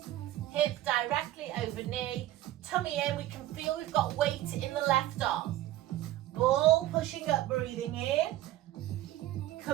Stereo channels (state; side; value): quieter; left; 14.8 dB